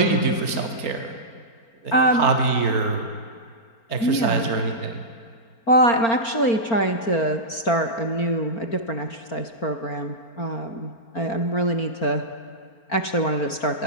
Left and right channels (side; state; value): right; late; 4.4 ms